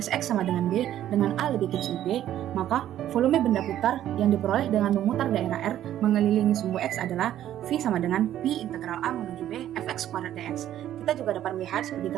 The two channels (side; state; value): left; quieter; 11.9 dB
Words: X sama dengan B, dengan A lebih kecil B, maka volume benda putar yang diperoleh dengan memutar daerah R mengelilingi sumbu X adalah V sama dengan P integral A menuju B fx kuadrat dx. Kita juga dapat melihat seperti